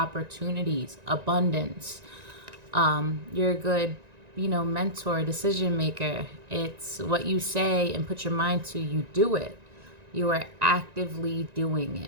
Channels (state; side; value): late; left; 1.9 ms